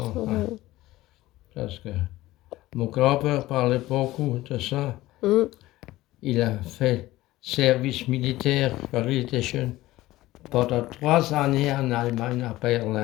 Hein. Mhm. Parce que mon grand-père parlait beaucoup de ça. Mhm. Il a fait service militaire quand il était jeune pendant 3 années en Allemagne, à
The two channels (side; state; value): right; quieter; 17.1 dB